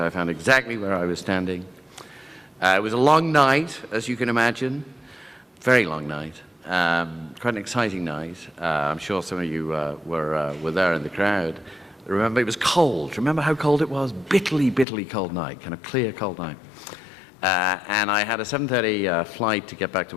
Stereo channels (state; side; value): drops out; right; at 14.9 s